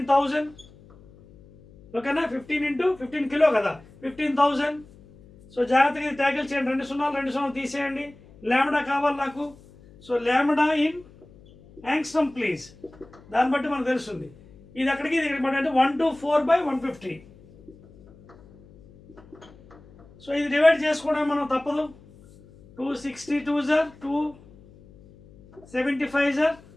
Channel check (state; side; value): noise; left; hum, 24 dB below the sound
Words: ఓకేనా? 15 × 15 కిలో కదా, 15,000. సో జాగ్రత్తగా ఇది ట్యాకిల్ చేయండి. 2 సున్నాలు తీసేయండి. లాంబ్డా కావాలి నాకు. So lambda in angstrom please. దాన్ని బట్టి మనకు తెలుస్తుంది ఇది అక్కడికి ఇది ఇక్కడికి అంటే 124/150. సో ఇది డివైడ్ చేసుకోవడం మనం తప్పదు. 262 సార్ 275 sir.